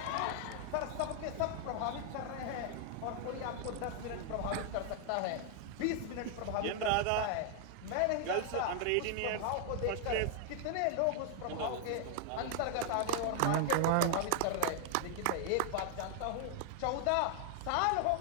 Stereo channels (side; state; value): both; different; correlation 0.00